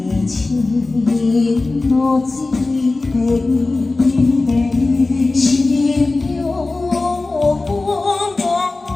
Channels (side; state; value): right; quieter; 3.3 dB